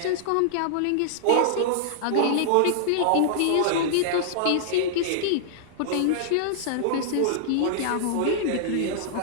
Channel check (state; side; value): different; both; correlation -0.01